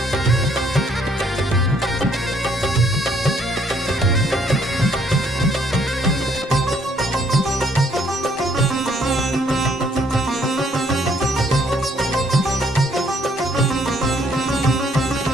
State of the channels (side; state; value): both; normal; correlation 0.66